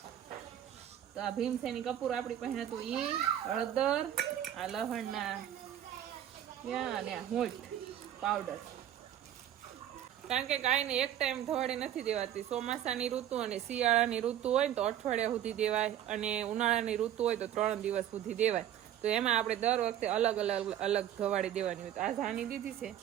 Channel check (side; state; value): left; quieter; 11.1 dB